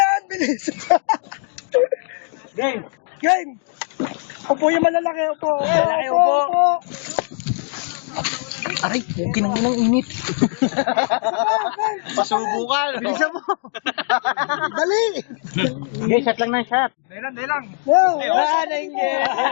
Bilis! Game. Game! Upo yung malalaki, upo! Malalaki, upo. Aray, okay na muna ang init. Pasubukan! Bilisan mo! Dali! Okay, shot lang ng shot. Dali lang! Wala na yung game.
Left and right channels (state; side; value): silent; right; 55 dB below the other